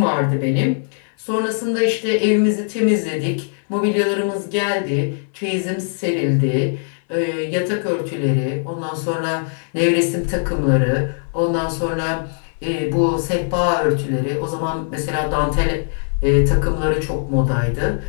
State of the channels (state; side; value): silent; right; 64 dB below the other